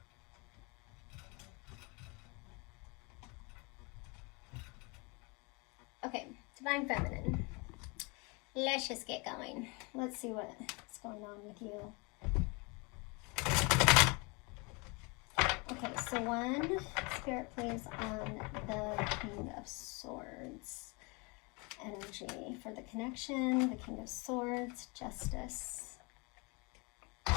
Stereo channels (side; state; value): right; quieter; 29.2 dB